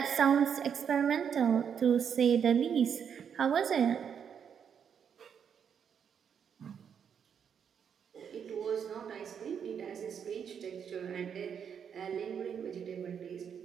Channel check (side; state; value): left; quieter; 7.6 dB